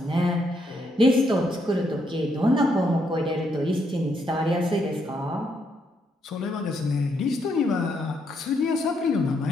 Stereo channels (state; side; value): normal; both; correlation 0.76